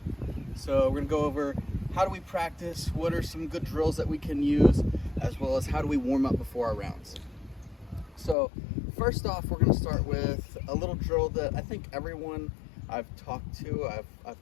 So we're going to go over how do we practice, what are some good drills that we can use, as well as how do we warm up before our rounds. So first off, we're going to start with a little drill that I think everyone I've talked to, I've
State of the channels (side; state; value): right; drops out; at 8.3 s